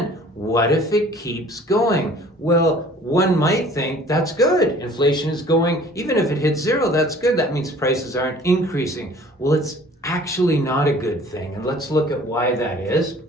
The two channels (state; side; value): normal; both; correlation 0.51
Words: What if it keeps going? Well, one might think that's good. Inflation is going, even if it hits zero, that's good. That means prices aren't increasing. Well, it's actually not a good thing. And let's look at why that is.